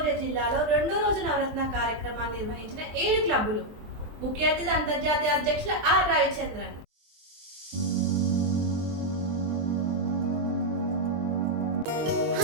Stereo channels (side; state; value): left; late; 23 ms